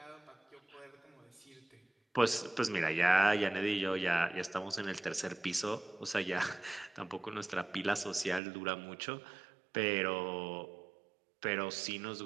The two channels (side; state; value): left; drops out; at 8.4 s